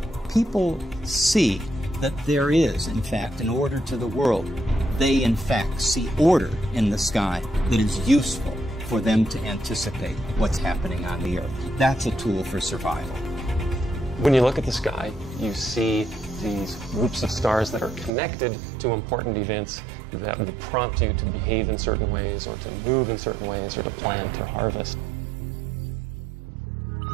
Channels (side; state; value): left; drops out; at 18.1 s